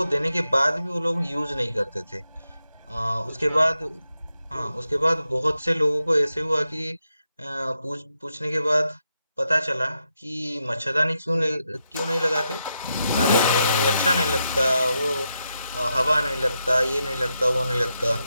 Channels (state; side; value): inverted; both; correlation -0.85